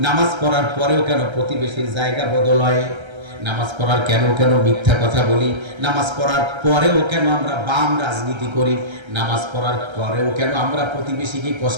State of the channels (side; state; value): left; late; 1.3 ms